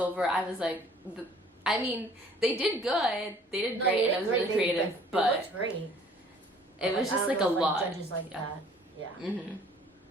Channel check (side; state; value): both; normal; correlation 0.54